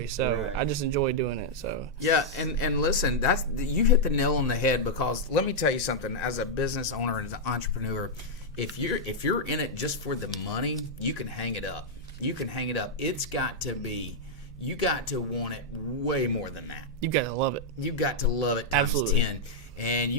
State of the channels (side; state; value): both; normal; correlation -0.05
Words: so I just enjoy doing it. So yeah, and listen, you hit the nail on the head, because let me tell you something. As a business owner and as an entrepreneur, if you're in it just for the money, you can hang it up. It's got to be. You got to want it way more than that. You got to love it. You got to love it times Absolutely. 10, and